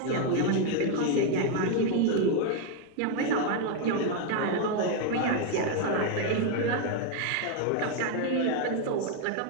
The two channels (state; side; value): different; both; correlation 0.01